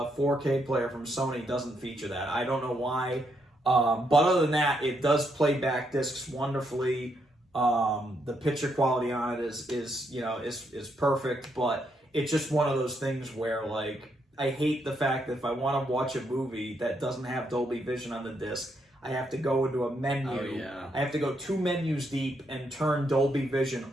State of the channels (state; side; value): normal; both; correlation 0.77